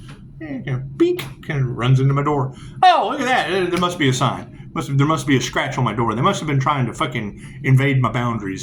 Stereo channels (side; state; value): both; identical; correlation 1.00